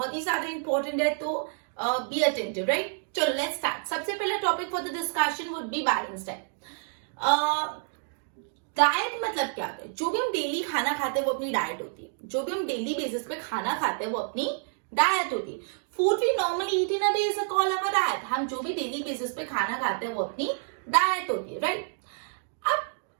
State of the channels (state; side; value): silent; left; digital silence